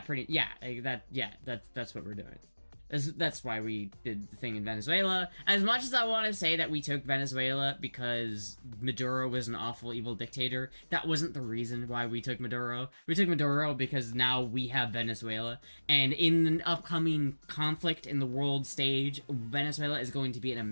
that's what we're doing. That's why we did the thing in Venezuela. As much as I want to say that we took Venezuela because Maduro was an awful, evil dictator, that wasn't the reason why we took Maduro. We took Maduro because now we have Venezuela. And in an upcoming conflict in the world stage, Venezuela is going to be an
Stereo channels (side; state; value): both; inverted; correlation -1.00